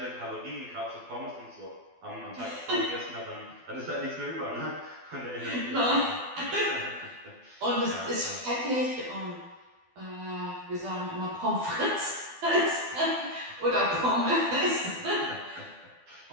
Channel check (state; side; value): late; left; 12 ms